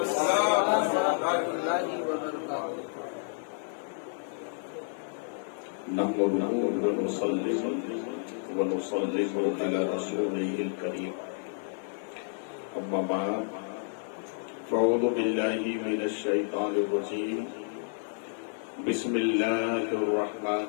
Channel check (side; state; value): right; silent; 58 dB below the other